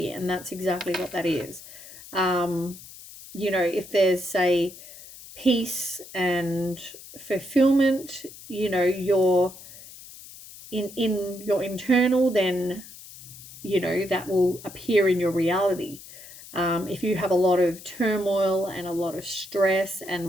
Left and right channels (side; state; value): left; noise; hiss, 17 dB below the sound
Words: and that's exactly what that is. You know, if there's, say, peace and fulfillment, you know, you're in your internal, then, you know, that will appear in your reality. If you have a lot of turmoil and a lot of stress